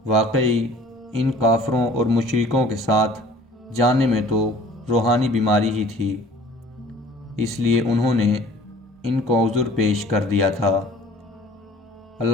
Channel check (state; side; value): normal; both; correlation 0.50